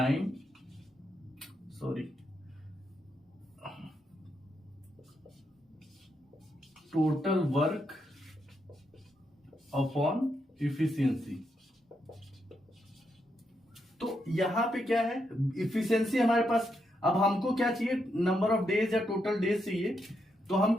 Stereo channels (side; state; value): both; normal; correlation 0.81